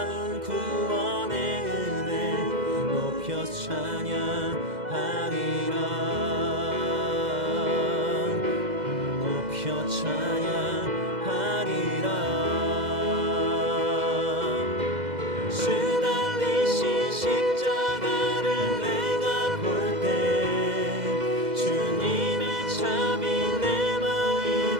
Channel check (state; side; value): late; left; 2.0 ms